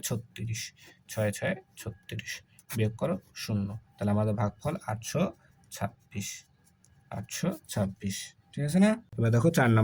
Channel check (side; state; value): both; identical; correlation 1.00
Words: 36, 6 6 36, বিয়োগ করো 0। তাহলে আমাদের ভাগফল 826, 826। ঠিক আছে না? এবার দেখো 4